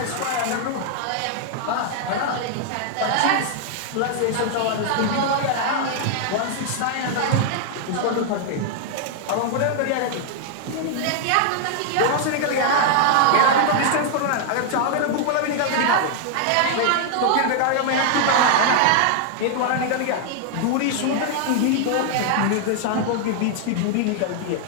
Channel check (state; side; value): different; both; correlation 0.00